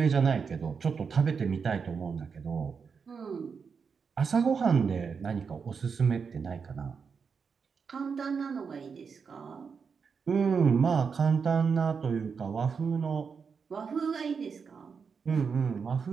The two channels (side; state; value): left; quieter; 5.8 dB